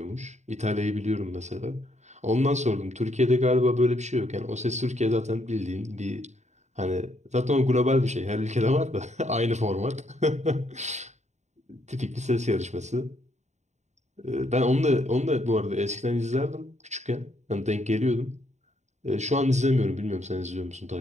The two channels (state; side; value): late; left; 0.33 ms